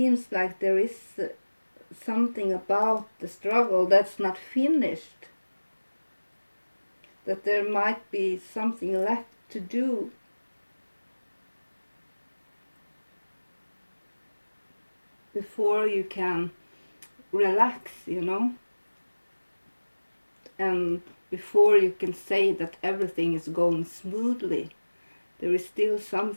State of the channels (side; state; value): both; inverted; correlation -1.00